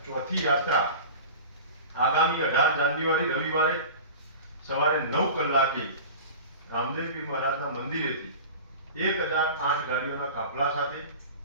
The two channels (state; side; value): inverted; both; correlation -0.35